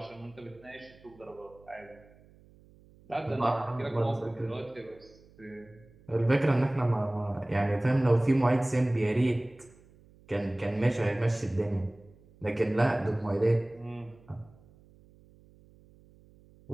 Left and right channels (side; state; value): right; noise; hum, 26 dB below the sound